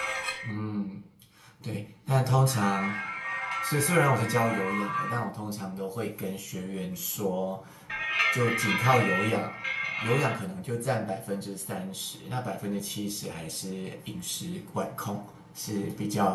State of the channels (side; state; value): both; identical; correlation 1.00